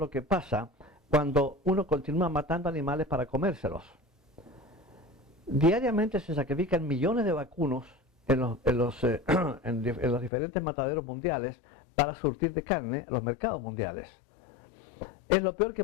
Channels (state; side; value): drops out; right; at 10.3 s